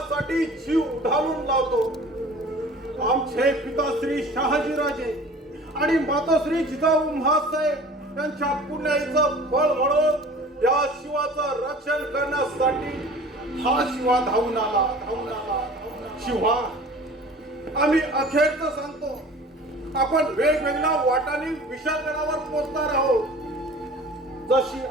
जीव उधारून लावतो. आमचे पिताश्री शहाजीराजे आणि माताश्री जिजाऊ महासाहेब यांच्या पुण्याईचं फळ म्हणून या शिवाचं रक्षण करण्यासाठी हा शिवा धावून आला. शिवा, आम्ही अखेरचं सांगतो, आपण वेगवेगळ्या वाटांनी विशाळगडावर पोहोचणार आहोत. जशी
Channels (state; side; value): normal; both; correlation 0.44